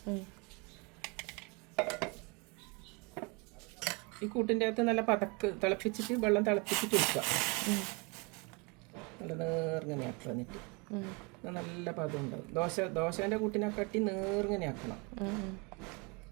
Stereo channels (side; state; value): left; quieter; 30.0 dB